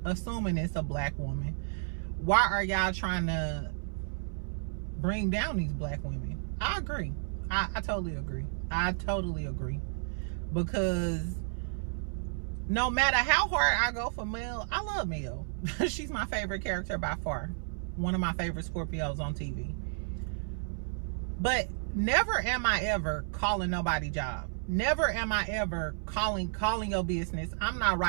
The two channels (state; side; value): silent; left; 57 dB below the other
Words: assuming it's a black woman, why are y'all trying to bring down these black women? I agree. I totally agree. I totally agree. Because no matter how hard I go for Mel, I love Mel. She's my favorite character by far. One of my favorite Scorpios on TV. But never am I ever calling nobody job. Never am I ever calling your business. I'm not